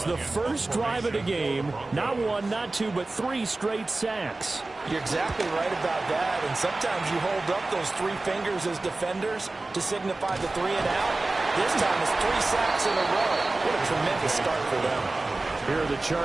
The first drive of the game, not 1, not 2, but 3 straight sacks. You're exactly right about that, and sometimes you hold up those 3 fingers as defenders to signify the 3 and out. This time it's 3 sacks in a row. What a tremendous start for them. Here are the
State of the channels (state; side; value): quieter; left; 3.1 dB